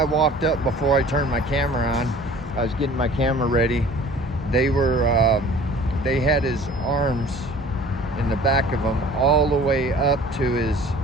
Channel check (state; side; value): normal; both; correlation 0.48